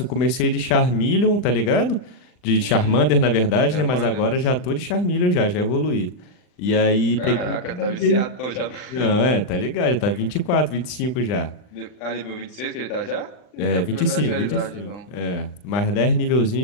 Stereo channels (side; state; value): right; late; 39 ms